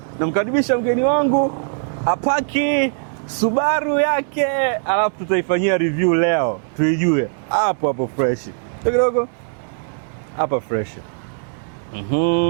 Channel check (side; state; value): left; silent; digital silence